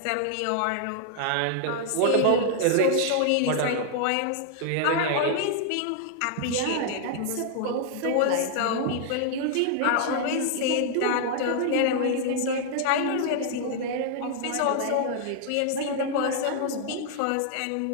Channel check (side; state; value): both; different; correlation 0.00